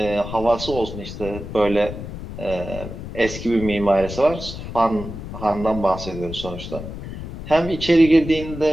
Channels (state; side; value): noise; left; rumble, 10 dB below the sound